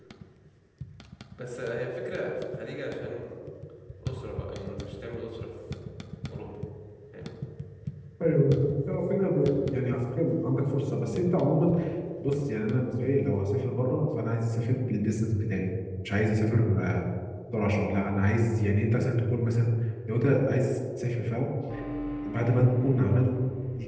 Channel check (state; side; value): identical; both; correlation 1.00